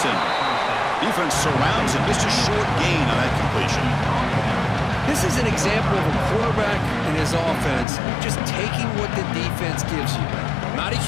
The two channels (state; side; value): drops out; right; at 7.9 s